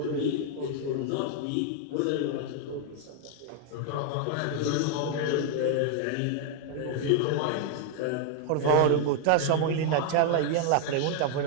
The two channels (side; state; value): both; different; correlation 0.00